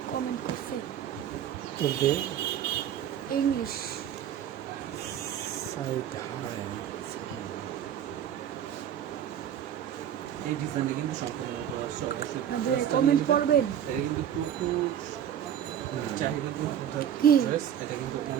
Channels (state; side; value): quieter; left; 9.8 dB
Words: কমেন্ট করছে তুলতে ইংলিশ। সাইড এই ডিজাইনটি কিন্তু সম্পূর্ণ কমেন্ট করবেন। এটা কিন্তু প্রচুর চাহিদা কি? ড্রেস, এটা কিন্তু